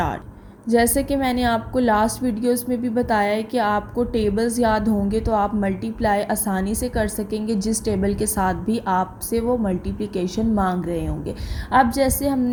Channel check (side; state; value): both; identical; correlation 1.00